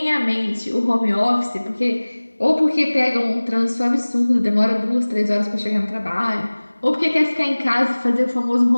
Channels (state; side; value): inverted; both; correlation -1.00